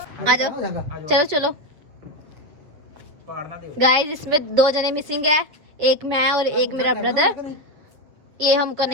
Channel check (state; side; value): late; left; 7.3 ms